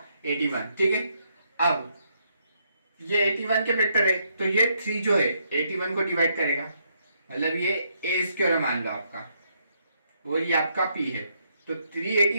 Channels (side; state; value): both; inverted; correlation -0.75